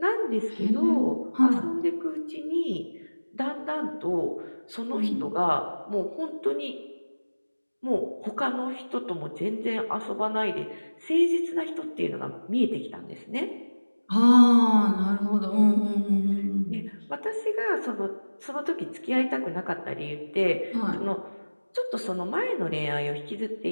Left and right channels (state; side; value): inverted; both; correlation -1.00